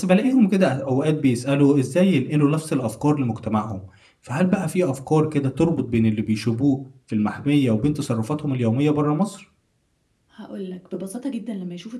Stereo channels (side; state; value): both; identical; correlation 1.00